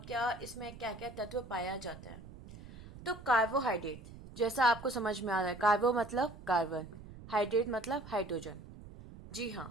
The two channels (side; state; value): right; noise; rumble, 16 dB below the sound